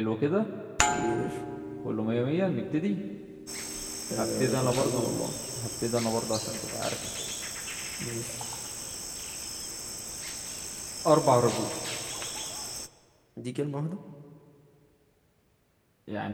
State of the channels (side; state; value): both; identical; correlation 1.00